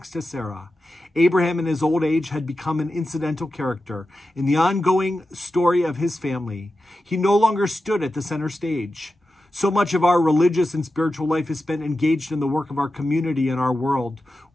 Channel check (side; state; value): both; normal; correlation 0.92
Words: to Sarah. Abraham in his old age had become an incidental character in the ongoing story of his family. He no longer stood at the center stage. So much of our religious and spiritual life is spent engaged in the work of our community and our world.